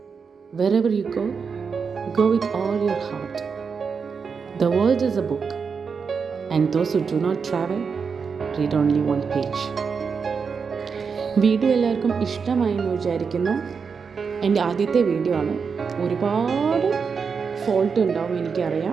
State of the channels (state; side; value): quieter; left; 5.7 dB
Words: Wherever you go with all your heart. The world is a book, and those who do not travel read only one page. Video എല്ലാവർക്കും ഇഷ്ടമായി എന്ന് വിചാരിക്കുന്നു. എൻ്റെ ആദ്യത്തെ വീഡിയോ ആണ്. ഒരുപാട് ഫോൾട്ട് ഉണ്ടാവും